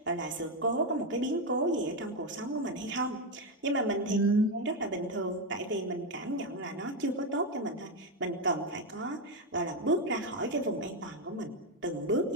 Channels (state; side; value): normal; both; correlation 0.07